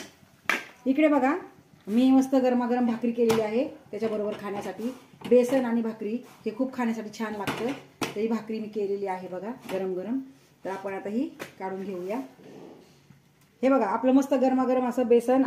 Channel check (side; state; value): both; identical; correlation 1.00